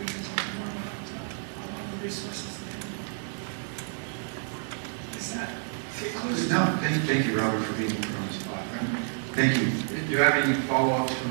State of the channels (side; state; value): left; silent; 58 dB below the other